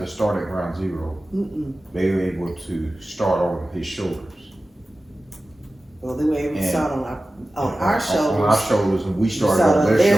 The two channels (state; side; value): normal; both; correlation 0.95